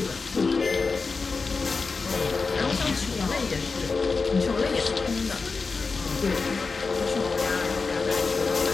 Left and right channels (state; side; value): quieter; right; 4.4 dB